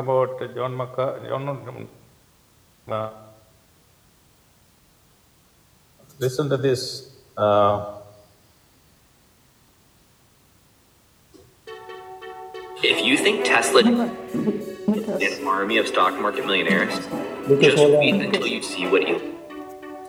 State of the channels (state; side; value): identical; both; correlation 1.00